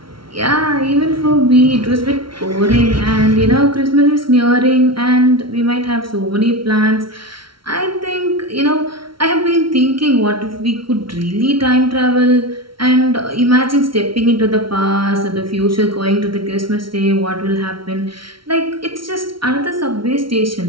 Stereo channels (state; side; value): late; left; 0.74 ms